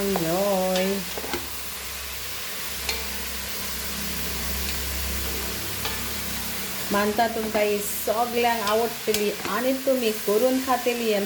मानता तुमकां ही सगळ्यांक आवडटली आनी तुमी करून खातेली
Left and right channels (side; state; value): both; identical; correlation 1.00